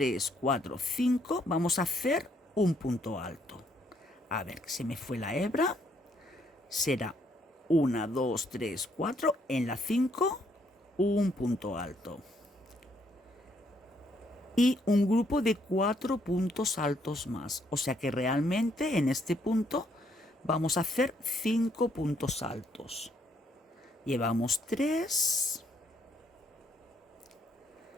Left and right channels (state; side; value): normal; both; correlation 0.70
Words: 4, 5, vamos a hacer un punto alto. A ver, se me fue la hebra. Será 1, 2, 3, 4. En la 5, un punto alto. Y un grupo de 4 puntos altos más. O sea que realmente en este punto vamos a hacer 5 puntos altos. Llevamos 3,